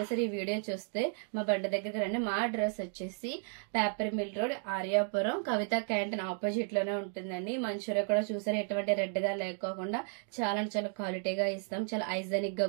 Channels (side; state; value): left; silent; 55 dB below the other